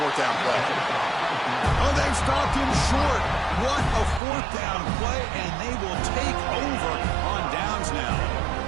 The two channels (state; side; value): drops out; left; at 4.2 s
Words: down play. Oh, they've stopped him short. What a fourth down play, and they will take over on downs now.